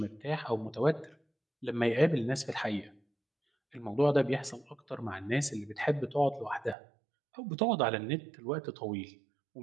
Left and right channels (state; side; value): drops out; left; at 6.8 s